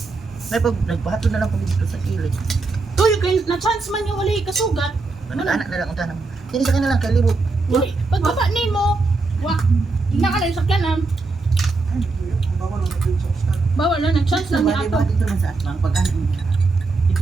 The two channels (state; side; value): quieter; left; 3.7 dB